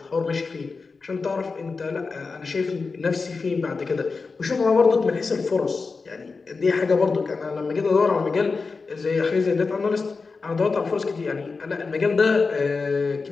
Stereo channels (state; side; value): quieter; right; 4.4 dB